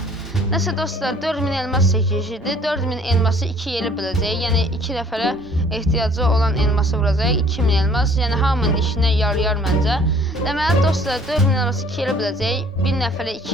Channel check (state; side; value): normal; both; correlation 0.55